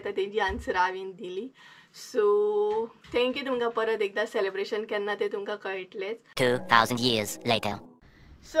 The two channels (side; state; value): both; identical; correlation 1.00